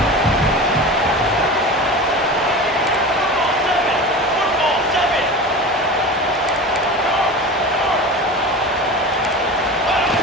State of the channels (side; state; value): both; normal; correlation 0.31